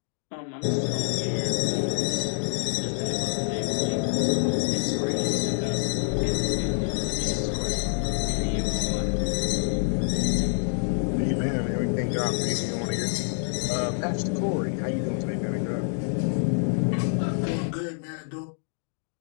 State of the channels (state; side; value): silent; right; digital silence